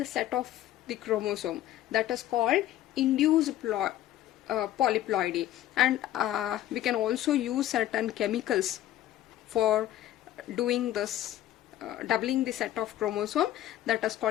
set of the chromosome. That is called induced polyploidy. And we can also use certain chemicals for doing this, doubling the set of chromosome. That is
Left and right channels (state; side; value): quieter; right; 13.3 dB